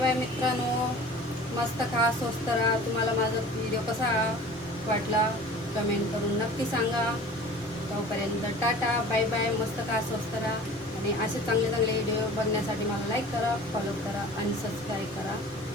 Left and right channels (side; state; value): both; normal; correlation 0.43